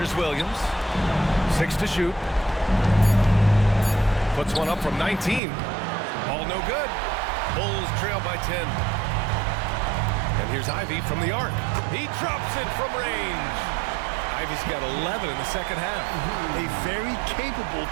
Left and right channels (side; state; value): left; drops out; at 5.4 s